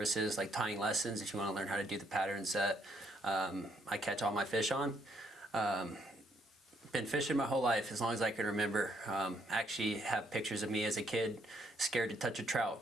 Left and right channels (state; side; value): normal; both; correlation 0.72